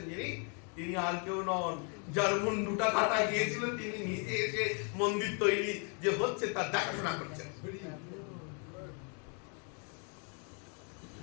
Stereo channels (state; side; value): quieter; right; 38.7 dB